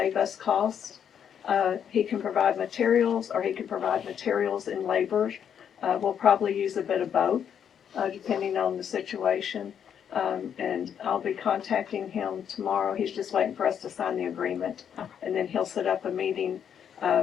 us costs. He can provide materials, or he can provide materials and labor. We'll probably use a bit of both, depending on the situation. And I'll be contacting him tomorrow. He's just waiting for us to sign the agreement. And then he'll set up a meeting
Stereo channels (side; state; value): right; quieter; 8.4 dB